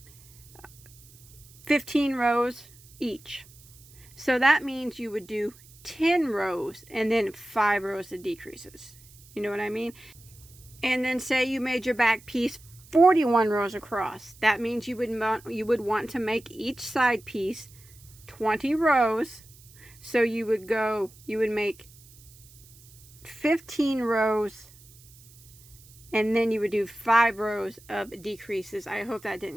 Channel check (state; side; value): noise; right; hiss, 24 dB below the sound